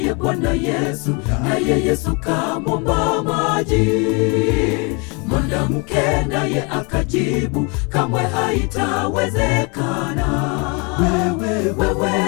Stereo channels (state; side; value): quieter; right; 31.7 dB